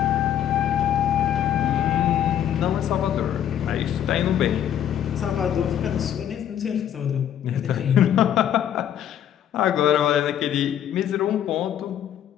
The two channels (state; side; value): quieter; right; 10.3 dB